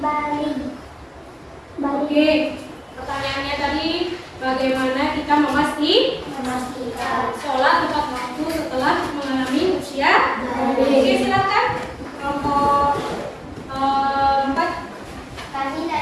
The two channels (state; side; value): identical; both; correlation 1.00